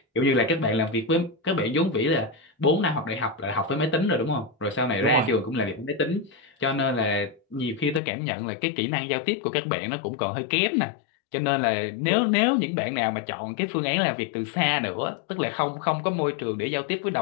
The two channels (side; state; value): right; drops out; at 8.0 s